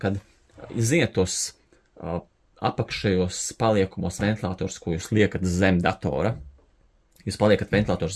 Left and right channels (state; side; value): identical; both; correlation 1.00